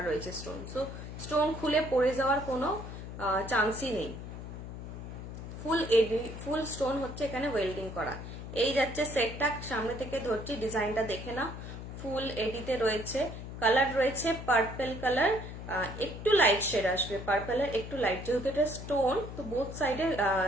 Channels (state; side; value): noise; left; hum, 9 dB below the sound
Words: রয়েছে স্টোন, সো স্টোন খুলে পড়ে যাওয়ার কোনো চান্সই নেই। ফুল এডি, ফুল স্টোন হচ্ছে এখানে ওয়েল্ডিং করা। এই যাচ্ছে সেটটা, সামনে থেকে ধরছি, ডিজাইনটা দেখে না, ফুল এডিতে রয়েছে, কালার রয়েছে পার্পল কালার, একটু লাইট শেড আসবে, পার্পলের একটু লাইট, যেহেতু এটা স্টোন তো বোথ সাইডে